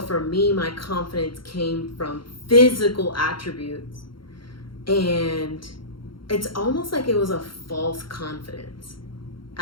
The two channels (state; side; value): late; right; 0.73 ms